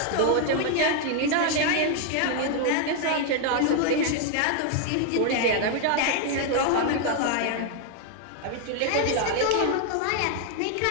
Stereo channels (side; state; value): both; different; correlation 0.00